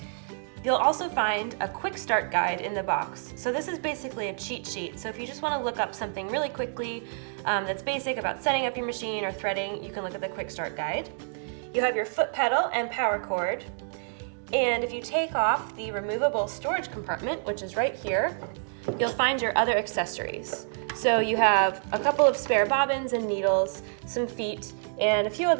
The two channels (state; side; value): silent; left; digital silence